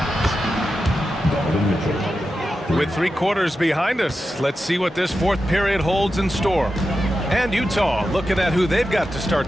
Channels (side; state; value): both; normal; correlation 0.90